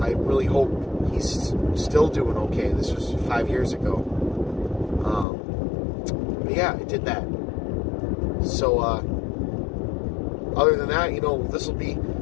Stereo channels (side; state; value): right; drops out; at 5.2 s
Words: I really hope he's still doing okay. This was 5 years ago. But yeah, I did that. So, other than that, you know, this will be